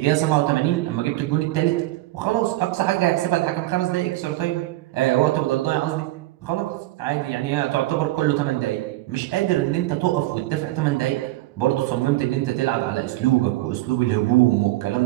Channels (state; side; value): quieter; left; 17.6 dB